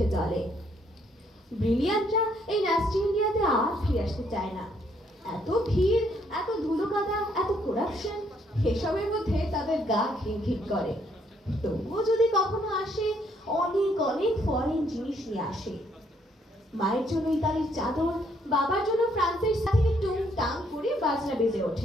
জলে। ব্রিলিয়ান্টরা এই ন্যাস্টি ইন্ডিয়াতে আর ফিরে আসতে চায় না। এত ভিড়, এত ধুলো কাদা, এত করাপশন, এসবের মধ্যে তাদের গা ঘিন করে। তবুও যদি কখনো আসে, অনেক অনেক ফরেন জিনিস নিয়ে আসে। মায়ের জন্য ইতালির চাদর, বাবার জন্য ফ্রান্সের সাথে টুং টাং করে বাজনা বেজে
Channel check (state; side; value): normal; both; correlation 0.69